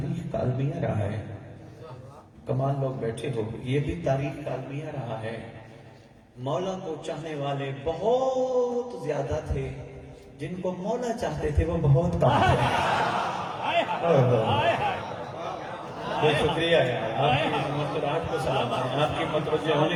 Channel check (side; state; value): both; identical; correlation 1.00